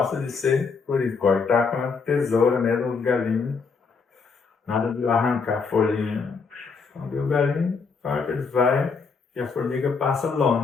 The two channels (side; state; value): right; quieter; 5.0 dB